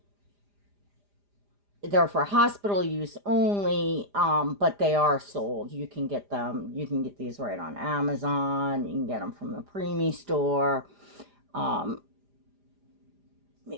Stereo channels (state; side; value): late; left; 4.9 ms